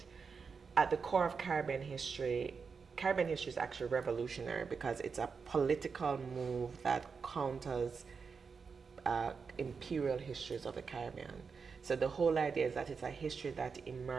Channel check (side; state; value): left; quieter; 5.4 dB